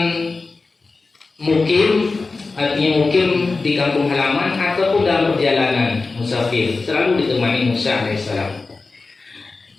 mukim, artinya mukim di kampung halaman ataupun dalam perjalanan musafir, selalu ditemani Musa alaihissalam.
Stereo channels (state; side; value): quieter; right; 3.9 dB